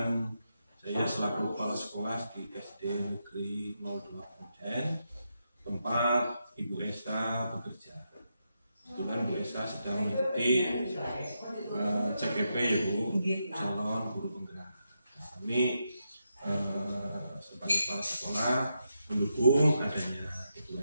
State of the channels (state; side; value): inverted; both; correlation -0.84